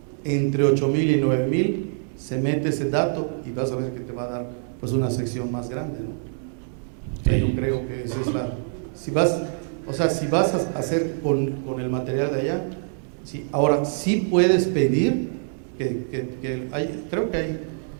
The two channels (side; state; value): left; silent; digital silence